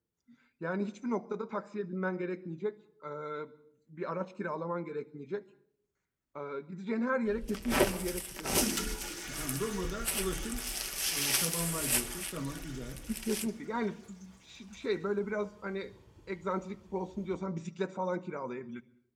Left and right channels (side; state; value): both; identical; correlation 1.00